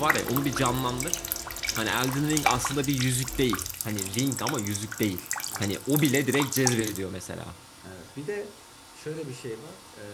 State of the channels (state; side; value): identical; both; correlation 1.00